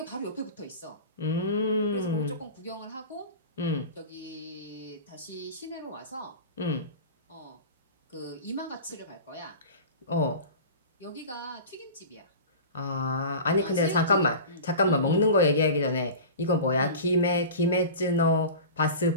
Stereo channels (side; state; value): both; inverted; correlation -0.34